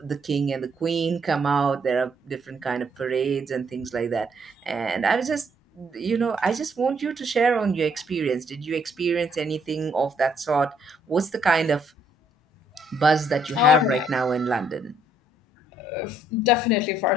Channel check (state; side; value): normal; both; correlation 0.69